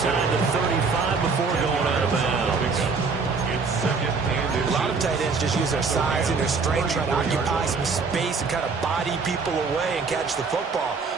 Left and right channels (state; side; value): quieter; left; 4.7 dB